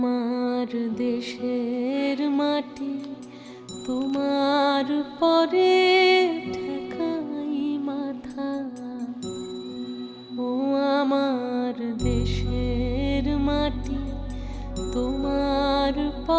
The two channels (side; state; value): both; identical; correlation 1.00